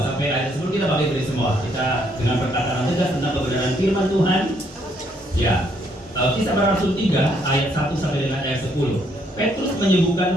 sampai ayat 10 kita pakai dari semua. Kita dengan perkataan tegas tentang kebenaran firman Tuhan. Ya. Kisah Para Rasul 3 ayat 1 sampai dengan ayat 10. Petrus menyembuhkan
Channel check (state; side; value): normal; both; correlation 0.70